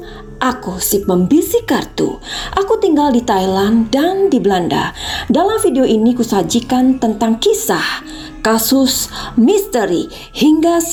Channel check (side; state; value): both; identical; correlation 1.00